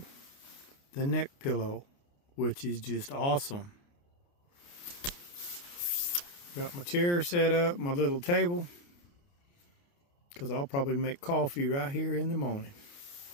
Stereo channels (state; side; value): late; right; 29 ms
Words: the neck pillow, which is just awesome. Got my chair set up, my little table, because I'll probably make coffee right here in the morning.